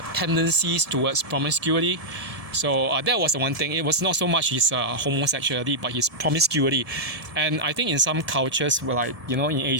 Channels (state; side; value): late; left; 1.7 ms